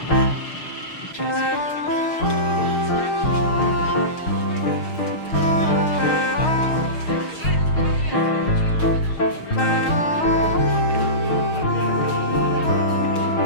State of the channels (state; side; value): late; right; 6.4 ms